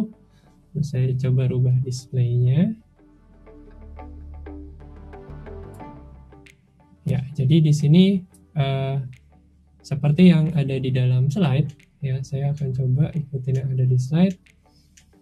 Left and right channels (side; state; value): both; identical; correlation 1.00